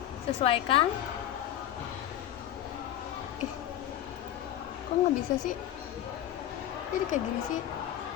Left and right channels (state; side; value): quieter; right; 11.8 dB